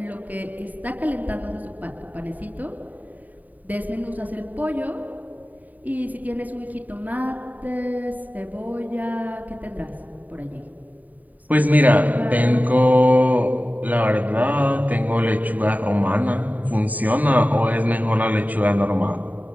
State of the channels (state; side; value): late; left; 0.078 ms